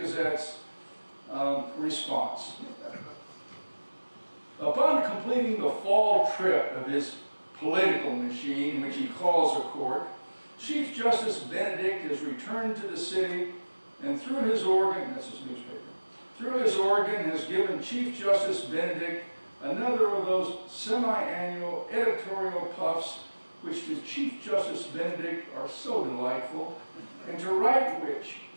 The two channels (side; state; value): both; inverted; correlation -1.00